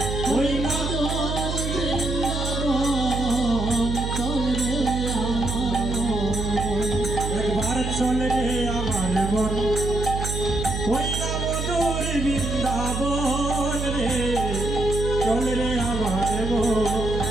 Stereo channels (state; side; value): noise; right; hum, 2 dB below the sound